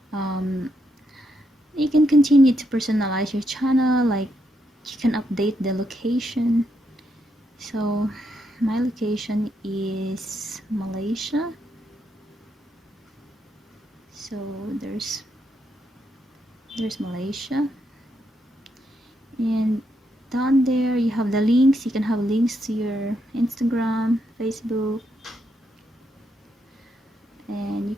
you can continue to personalize your channel, like you can update the location. So my location is Malaysia, so there's Malaysia, and down there you have the links. You can have links to your Instagram, Facebook, and you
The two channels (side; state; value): both; normal; correlation 0.79